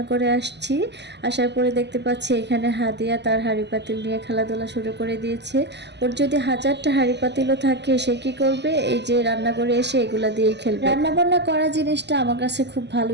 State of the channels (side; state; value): left; late; 0.50 ms